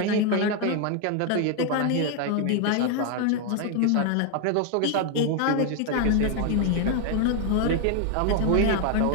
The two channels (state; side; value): different; both; correlation 0.01